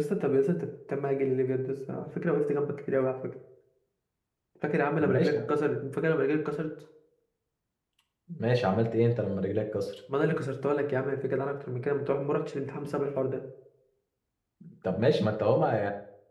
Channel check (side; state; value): both; identical; correlation 1.00